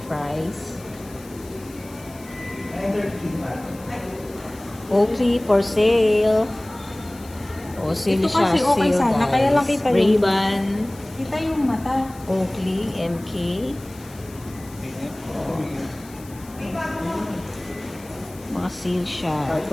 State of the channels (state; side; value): noise; left; hiss, 21 dB below the sound